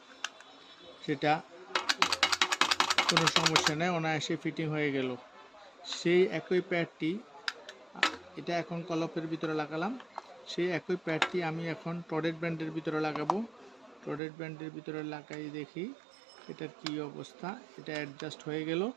সেটা কোনো সমস্যা নেই, অনায়াসে ফিটিং হয়ে গেল। সেই একই প্যাডটি, এটা এখন কলপের ভিতরে লাগালাম, সেই একই প্যাডটি আমি এখন টডেট ব্র্যান্ডের ভিতরে লাগাবো। টডেট ব্র্যান্ডের ভিতরে লাগাই দেখি এটার কি অবস্থা। এটা অ্যাডজাস্ট হয়ে গেল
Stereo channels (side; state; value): left; drops out; at 14.2 s